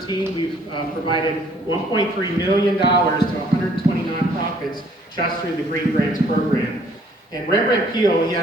we've provided $1.3 million to 120 nonprofits just through the green grants program. And Rembrandt Peale, he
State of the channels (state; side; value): normal; both; correlation 0.61